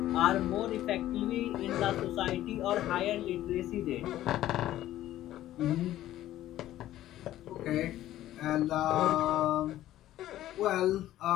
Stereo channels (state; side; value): quieter; right; 13.8 dB